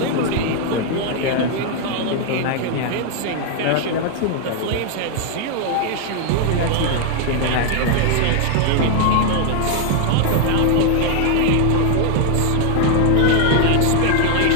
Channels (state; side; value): different; both; correlation 0.00